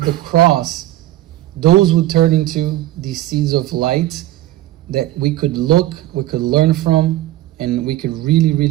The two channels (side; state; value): left; quieter; 15.1 dB